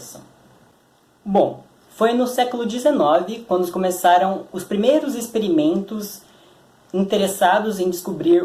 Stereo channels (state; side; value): identical; both; correlation 1.00